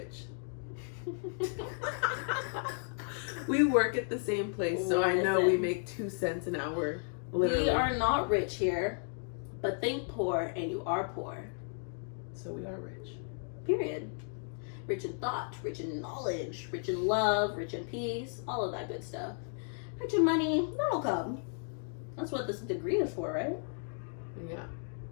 We work at the same place, so I know we Listen. make 2 cents an hour. Literally. We are not rich here, but think poor and you are poor. So we are rich. Period. Rich in thought, rich in knowledge, rich in love, rich in peace, all of that good stuff. Rich in money, that'll come. That's what this degree is for, right? Yeah.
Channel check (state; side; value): silent; right; 55 dB below the other